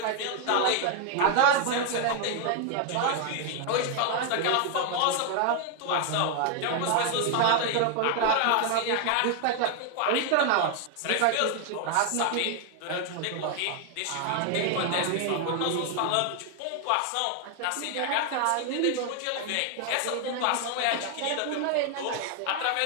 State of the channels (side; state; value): both; different; correlation 0.00